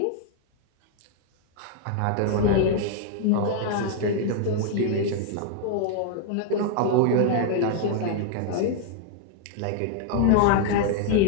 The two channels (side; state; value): both; different; correlation -0.01